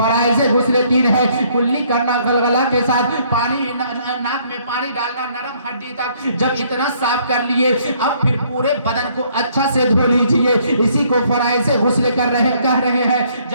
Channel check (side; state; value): both; inverted; correlation -0.65